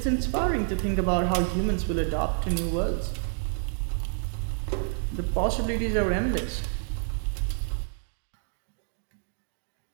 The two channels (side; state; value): left; silent; digital silence